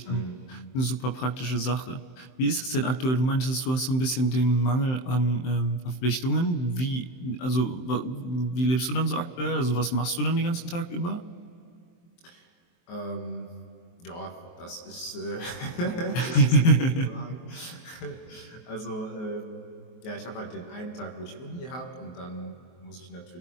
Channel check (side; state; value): right; late; 23 ms